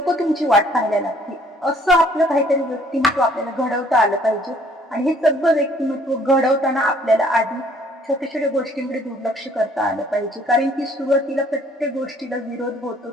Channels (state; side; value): normal; both; correlation 0.60